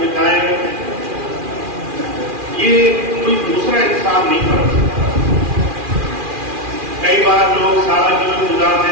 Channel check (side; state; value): left; late; 2.4 ms